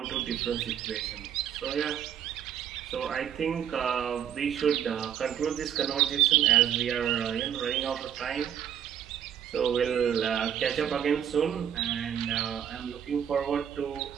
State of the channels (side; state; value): left; quieter; 9.4 dB